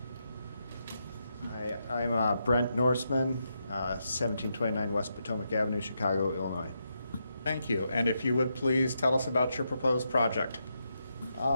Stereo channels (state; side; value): inverted; both; correlation -0.83